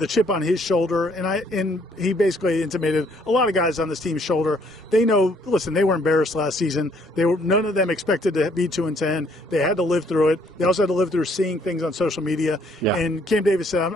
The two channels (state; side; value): normal; both; correlation 0.65